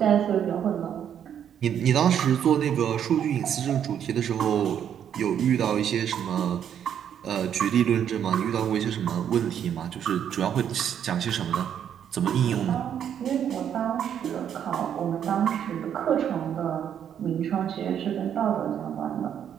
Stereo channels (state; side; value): quieter; left; 9.1 dB